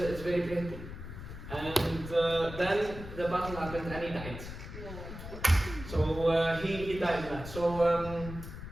very painful. And then the battle happened and he died. So he died in that. So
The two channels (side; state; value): left; noise; rumble, 10 dB below the sound